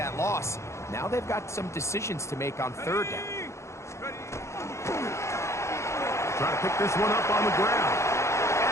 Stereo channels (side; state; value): right; late; 0.14 ms